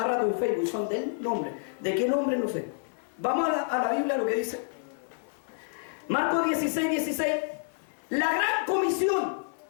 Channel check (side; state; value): right; silent; digital silence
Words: rato en Facebook. Son del nombre. ¿De qué nombre? No sé. Vamos a la Biblia, lo que dice. Marcos 16:16. La gran comisión.